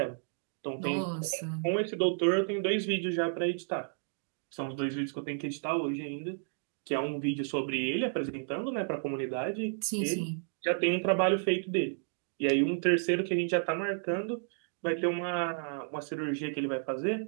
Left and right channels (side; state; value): left; silent; digital silence